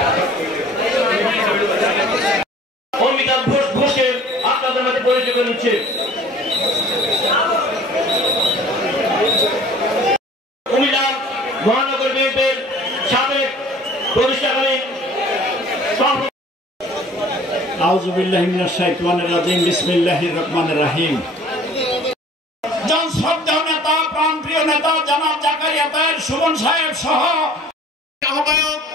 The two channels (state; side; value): normal; both; correlation 0.49